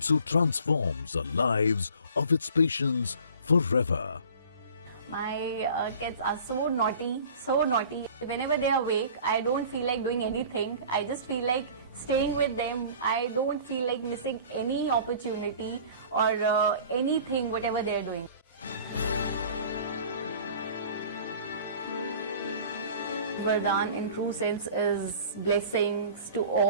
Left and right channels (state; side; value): inverted; both; correlation -0.45